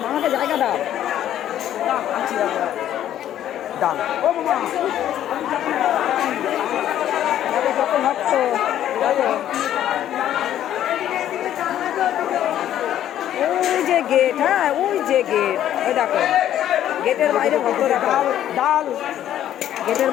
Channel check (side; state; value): right; quieter; 11.5 dB